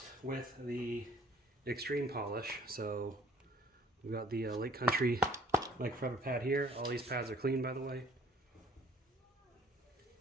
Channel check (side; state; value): both; normal; correlation 0.57